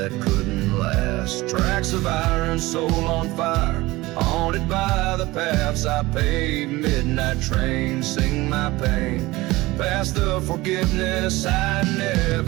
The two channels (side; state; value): left; quieter; 19.8 dB